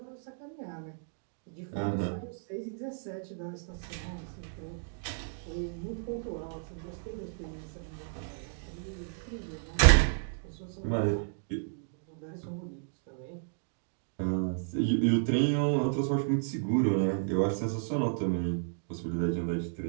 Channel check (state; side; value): silent; left; digital silence